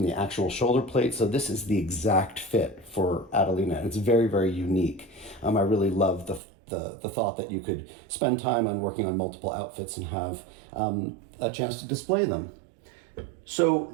the actual shoulder plate. So this is the exact fit for Adelina. It's very, very unique. I really love the thought that you could spend time on working on multiple outfits and have a chance to display them. So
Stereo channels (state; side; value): drops out; left; at 6.4 s